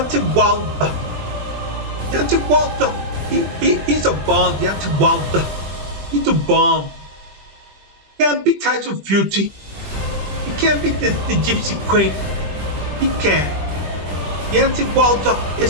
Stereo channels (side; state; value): left; late; 20 ms